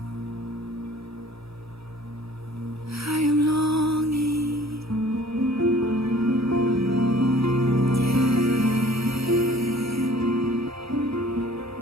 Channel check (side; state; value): both; normal; correlation 0.51